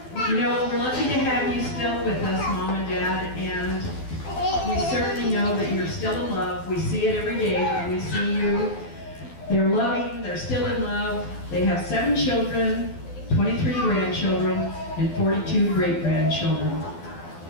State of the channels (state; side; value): late; right; 12 ms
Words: You know, we're lucky to have you still with us, Mom and Dad, and we certainly know that you're still in love. We see it every day when we see you. They're loving, they're still in love. They have 7 children, 23 grandchildren, and 42 great-grandchildren.